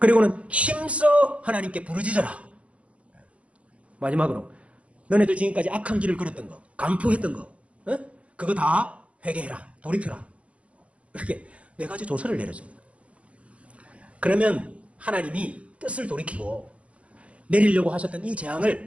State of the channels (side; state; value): left; late; 0.063 ms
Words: 힘써 하나님께 부르짖어라. 마지막으로 너네들 지금까지 악한 길을 걸었던 거, 간포했던 거, 그거 다 회개해라, 돌이켜라. 이렇게 4가지 조서를 내렸습니다. 그러면 하나님이 뜻을 돌이키고 내리려고 하셨던 이